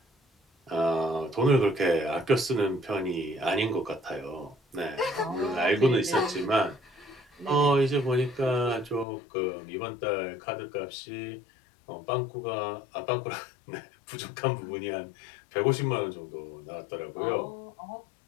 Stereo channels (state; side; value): drops out; right; at 9.1 s